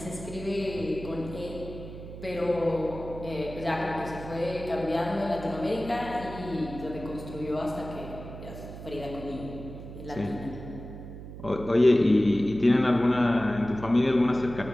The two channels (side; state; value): right; noise; hum, 12 dB below the sound